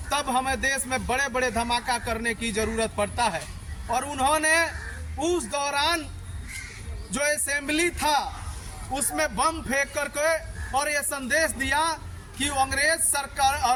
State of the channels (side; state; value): both; identical; correlation 1.00